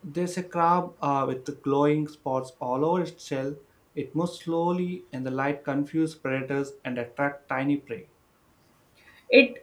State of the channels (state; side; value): identical; both; correlation 1.00